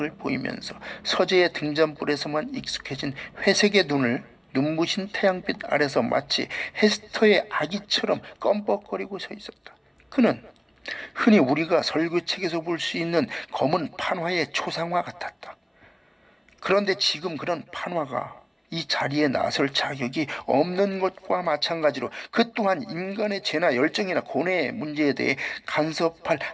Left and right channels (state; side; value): identical; both; correlation 1.00